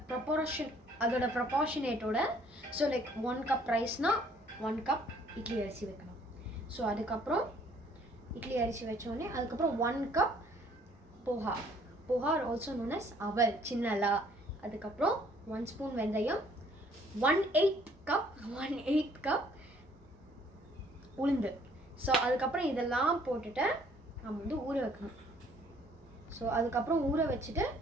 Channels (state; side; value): normal; both; correlation 0.60